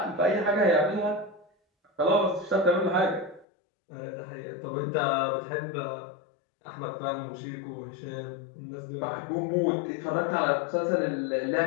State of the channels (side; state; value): right; drops out; at 3.5 s